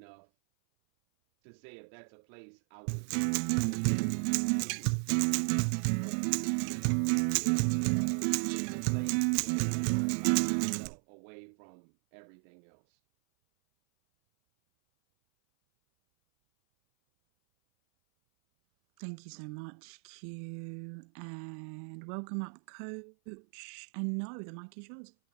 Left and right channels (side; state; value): left; silent; 55 dB below the other